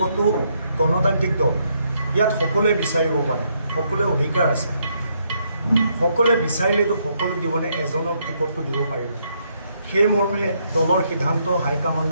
গণতান্ত্ৰিক দল, ইয়াত সকলোৱে বিচাৰিব পাৰে, সকলোৱে অধিকাৰ আছে। সকলোৱে বিচাৰিলেতো সকলোক দিবনে, এজনক টিকটটো দিব পাৰিব। সেই মৰ্মে দলৰ সিদ্ধান্ত,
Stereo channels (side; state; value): both; inverted; correlation -0.74